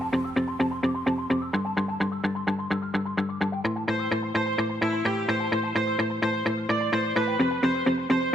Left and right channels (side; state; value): both; normal; correlation 0.78